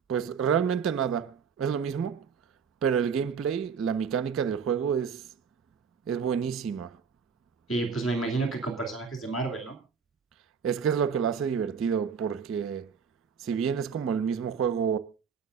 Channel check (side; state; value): left; quieter; 6.5 dB